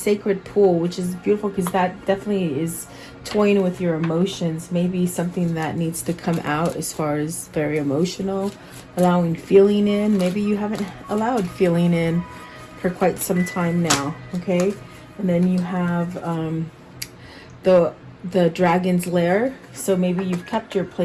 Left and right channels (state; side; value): identical; both; correlation 1.00